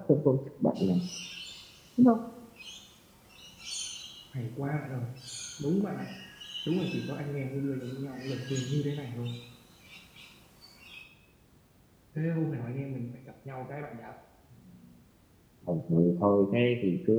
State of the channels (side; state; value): both; identical; correlation 1.00